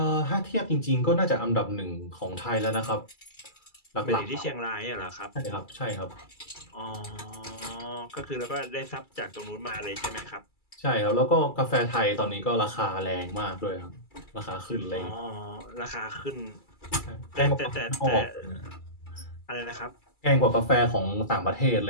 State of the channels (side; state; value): right; late; 2.3 ms